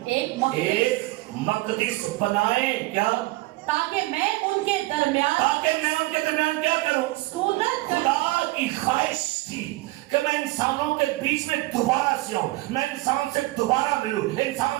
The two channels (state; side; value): quieter; left; 20.5 dB